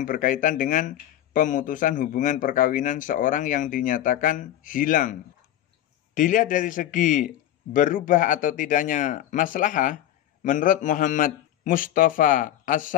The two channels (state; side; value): quieter; right; 12.2 dB